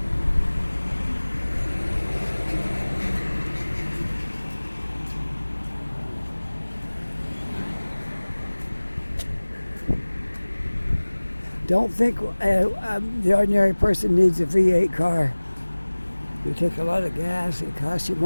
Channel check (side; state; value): both; inverted; correlation -1.00